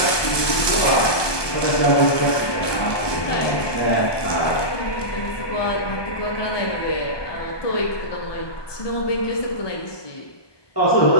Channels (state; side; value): late; right; 1.2 ms